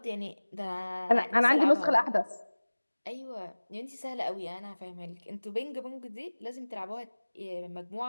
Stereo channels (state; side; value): inverted; both; correlation -1.00